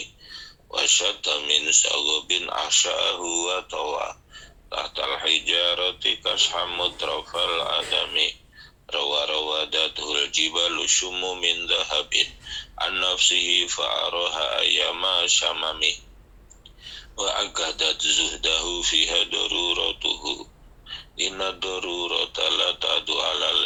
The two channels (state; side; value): identical; both; correlation 1.00